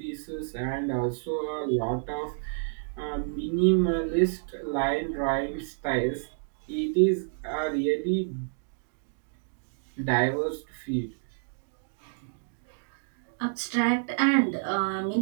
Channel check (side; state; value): left; silent; digital silence